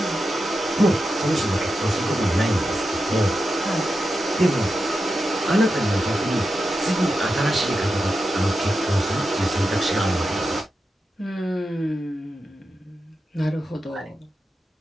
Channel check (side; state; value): both; normal; correlation 0.89